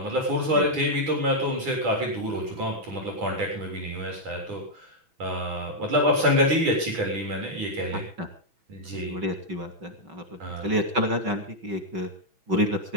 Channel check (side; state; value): left; late; 6.2 ms